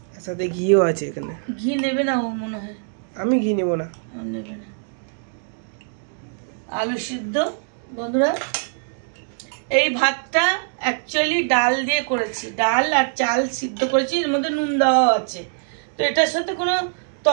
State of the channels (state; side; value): silent; left; 64 dB below the other